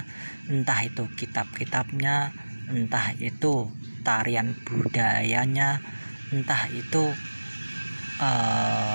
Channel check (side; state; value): both; inverted; correlation -1.00